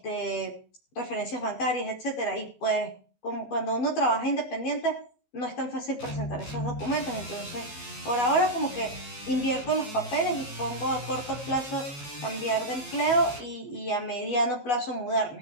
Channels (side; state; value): right; late; 14 ms